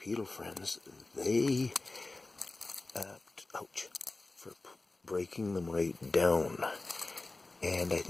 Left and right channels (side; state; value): right; quieter; 3.2 dB